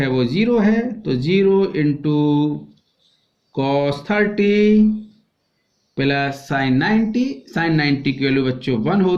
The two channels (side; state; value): both; identical; correlation 1.00